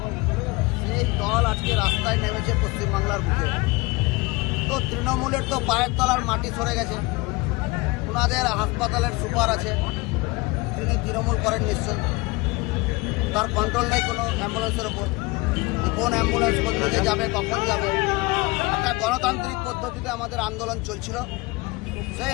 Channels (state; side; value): quieter; right; 24.2 dB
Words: সেই দল আজকে রাস্তায় নেমেছে পশ্চিমবাংলার বুকে। তো তৃণমূলের তো পায়ের তলার মাটি সরে গেছে। ওনাদের হাসপাতালের সুপার আছে, তিনি তৃণমূল করেন নিশ্চয়ই। তার কন্ট্রোল নেই কোনো অ্যাম্বুলেন্সের ওপর, কোন অ্যাম্বুলেন্স কোথা যাবে, কখন যাবে। একটা গণতান্ত্রিক পদ্ধতিতে আমাদের আন্দোলন চলছিল, সেই